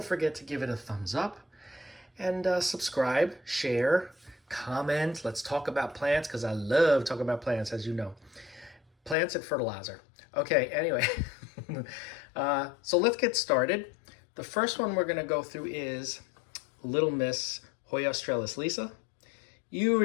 forget to give it a thumbs up. And subscribe, share, comment. Let's talk about plants because I love talking about plants, as you know. Plants and fertilizer. Okay, anyway. So let's get started. The first one we're going to go through is Little Miss Hoya australis Lisa. You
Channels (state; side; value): drops out; right; at 9.2 s